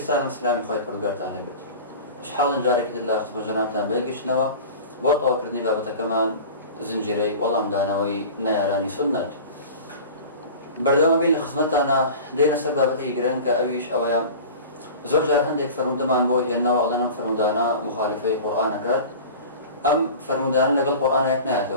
السلام خوي برقارت أهل البيت. شحال جارك الله خطب جنابتنا بيقشنوا بوطا وكردني بابتا كمان زنجيري والله مدانوي نيراني سنة بردوما بين لخصمتنا دينا سر بابتا يقرن كأويش أويام زور جار هندێک فرمودەمان بۆ هێناوە ئەڵێن فرمودانە مخالفەی قورئانەکات، ئەم فرمودانە لەگەڵ قورئانەک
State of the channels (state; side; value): inverted; both; correlation -0.37